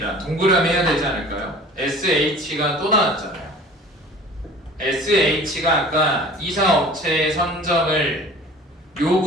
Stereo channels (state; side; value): normal; both; correlation 0.44